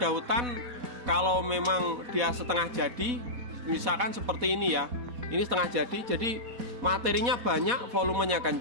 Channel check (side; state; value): left; late; 4.1 ms